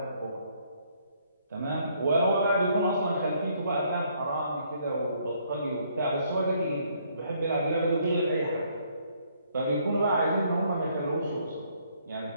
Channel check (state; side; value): inverted; both; correlation -0.67